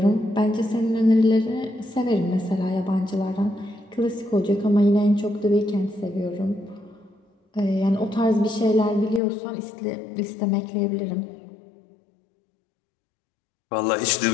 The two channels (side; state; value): right; drops out; at 9.2 s